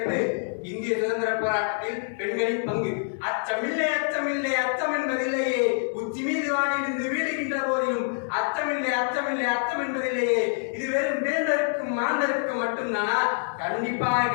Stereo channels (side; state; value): right; silent; 61 dB below the other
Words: இந்திய சுதந்திர போராட்டத்தில் பெண்களின் பங்கு. அச்சமில்லை அச்சமில்லை அச்சம் என்பதில்லையே, உச்சி மீது வானிலிருந்து வீழுகின்ற போதிலும் அச்சமில்லை அச்சமில்லை அச்சம் என்பதில்லையே. இது வெறும் வேந்தருக்கும் மாந்தருக்கும் மட்டும்தானா? கண்டிப்பாக